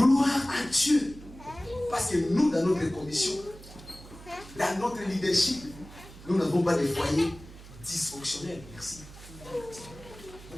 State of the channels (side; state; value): right; noise; hum, 18 dB below the sound